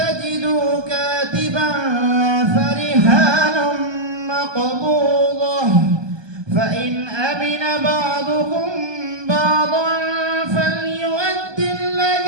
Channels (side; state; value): left; late; 1.2 ms